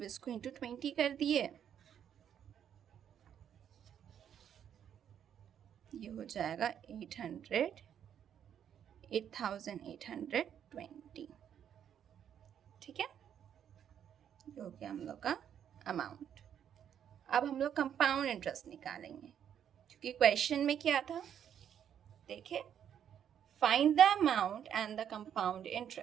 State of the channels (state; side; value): quieter; left; 9.1 dB